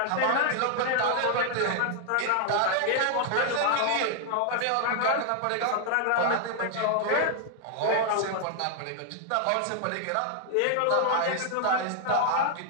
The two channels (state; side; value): different; both; correlation 0.00